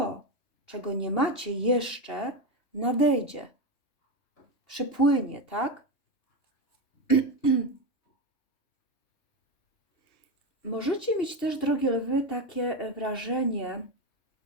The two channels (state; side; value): late; right; 3.3 ms